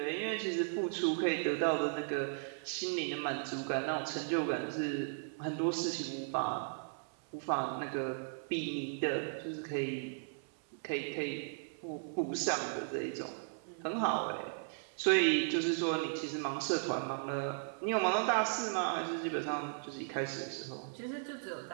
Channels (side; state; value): left; silent; 54 dB below the other